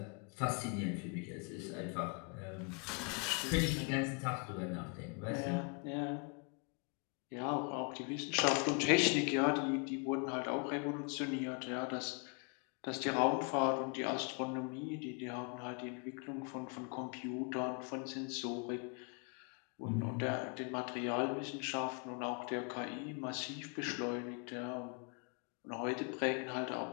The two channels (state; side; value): quieter; right; 36.6 dB